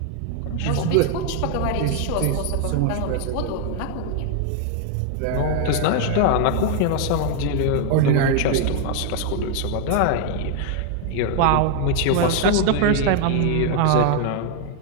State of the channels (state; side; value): different; both; correlation 0.00